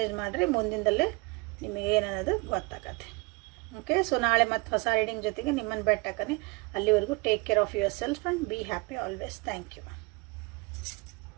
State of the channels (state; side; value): quieter; left; 27.2 dB